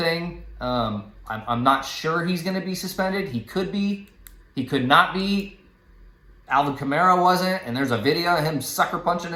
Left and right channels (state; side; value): identical; both; correlation 1.00